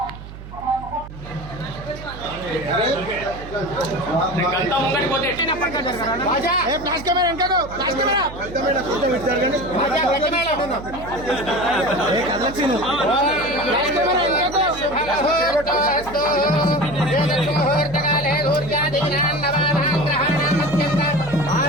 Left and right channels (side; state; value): right; noise; hum, 14 dB below the sound